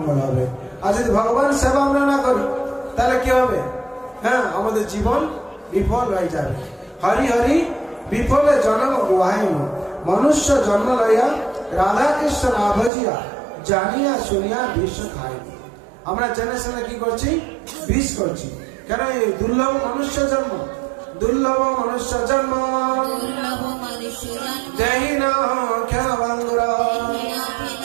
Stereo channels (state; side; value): drops out; left; at 12.9 s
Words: হবে। আর যদি ভগবানের সেবা আমরা না করি তাহলে কি হবে, আমাদের জীবন বিফল হয়ে যাবে। হরি হরি বিফলে জন্ম গুহাইন, মনুষ্য জন্ম লইয়া রাধা কৃষ্ণ না ভজিয়া, জানিয়া শুনিয়া বিষ খাইনি। আমরা জেনে শুনে কি করছি, বিষ করছি। কেন? এই দুর্লভ মনুষ্য জন্ম, দুর্লভ মনুষ্য জন্ম দেহি না ক্ষণভঙ্গুর,